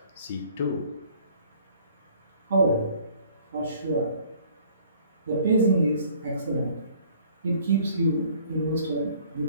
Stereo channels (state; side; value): inverted; both; correlation -0.56